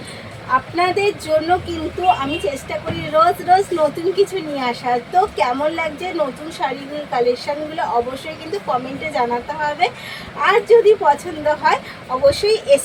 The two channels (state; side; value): identical; both; correlation 1.00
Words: আপনাদের জন্য কিন্তু আমি চেষ্টা করি রোজ রোজ নতুন কিছু নিয়ে আসার। তো কেমন লাগছে নতুন শাড়ির কালেকশানগুলো অবশ্যই কিন্তু কমেন্টে জানাতে হবে। আর যদি পছন্দ হয় অবশ্যই